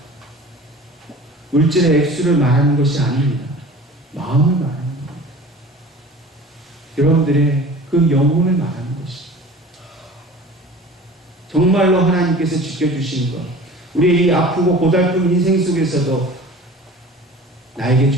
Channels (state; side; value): normal; both; correlation 0.42